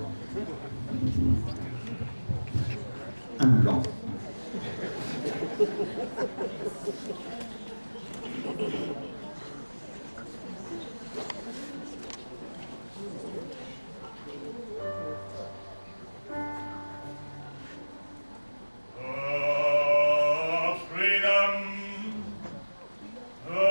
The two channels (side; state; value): both; inverted; correlation -1.00